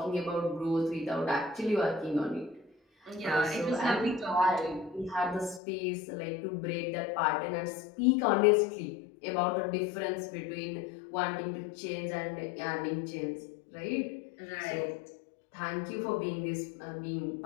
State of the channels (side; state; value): right; drops out; at 5.6 s